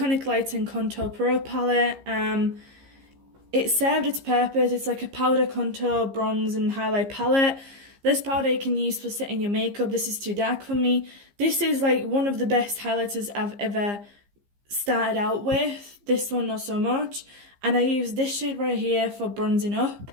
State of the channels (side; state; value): left; late; 15 ms